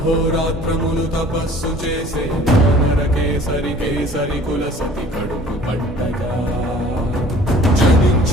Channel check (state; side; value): normal; both; correlation 0.50